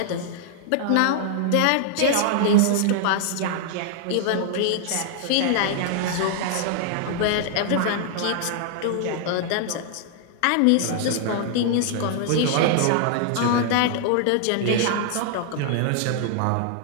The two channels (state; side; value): different; both; correlation 0.00